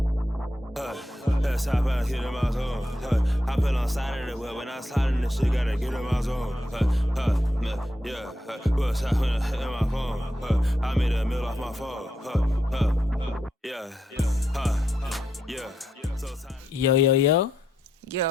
Let's hop out, hit in my zone. Hop in on side of the wheel. When I slide in this shit, gotta get in my zone. Yeah, what's happening in my phone? I made a meal off my phone. Yeah.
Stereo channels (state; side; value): normal; both; correlation 0.81